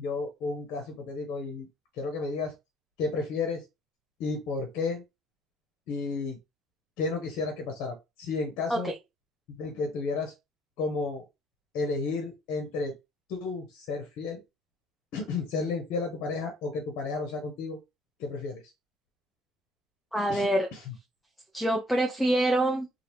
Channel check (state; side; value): normal; both; correlation 0.59